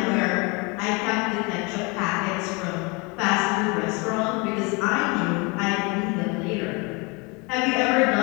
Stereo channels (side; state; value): right; quieter; 29.0 dB